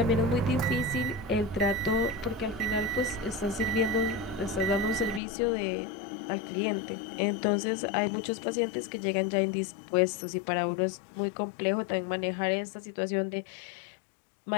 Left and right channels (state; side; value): drops out; right; at 5.2 s